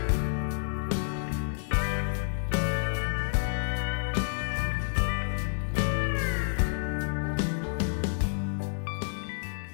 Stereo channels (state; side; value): silent; right; digital silence